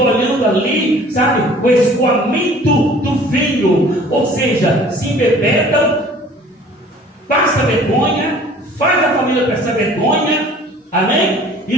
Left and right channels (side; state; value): both; normal; correlation 0.50